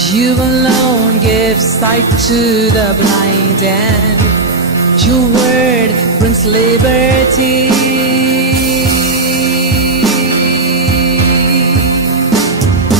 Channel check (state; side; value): quieter; left; 3.3 dB